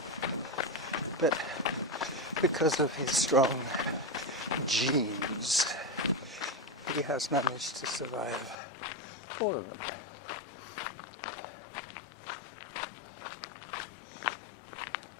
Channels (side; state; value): right; drops out; at 8.6 s